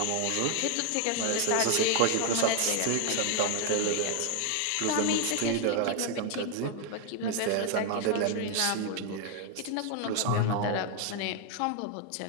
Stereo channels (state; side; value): different; both; correlation 0.00